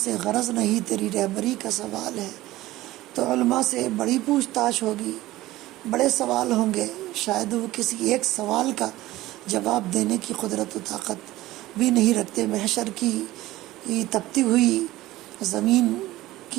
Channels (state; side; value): quieter; left; 16.9 dB